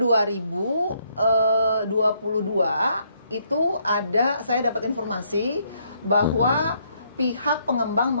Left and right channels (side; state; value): both; inverted; correlation -0.71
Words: itu ada, saya dapat informasi bahwa pihak pengembang